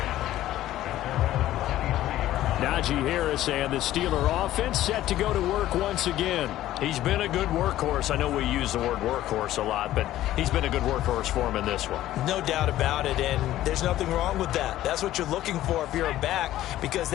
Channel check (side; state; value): right; quieter; 14.0 dB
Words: Najee Harris and the Steeler offense set to go to work once again. He's been a good workhorse. I know we use the word workhorse a lot, but he's been a good workhorse for him in this one. No doubt about it, and there's nothing wrong with that. That's what you're looking for if you're a back, because